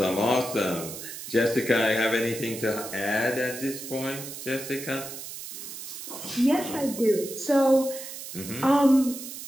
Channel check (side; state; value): right; noise; hiss, 10 dB below the sound